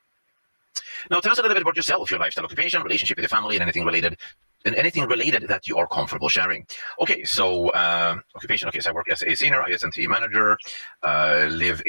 Now, tell us a little bit about yourself, your lifestyle, occupation, relationship with your family, and anything related that you are comfortable sharing. Okay, so occupation. Okay, so I work as a senior IS&T manager, live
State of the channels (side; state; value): both; inverted; correlation -1.00